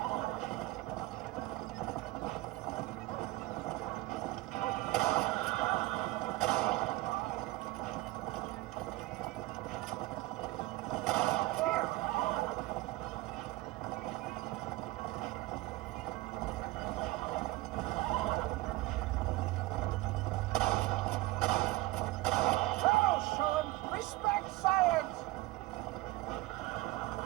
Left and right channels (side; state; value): left; quieter; 19.6 dB